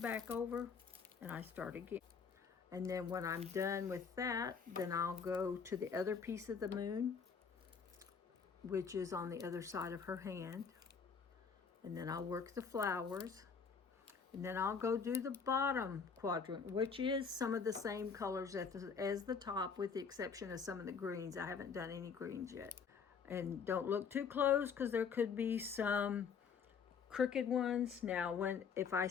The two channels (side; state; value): right; quieter; 6.1 dB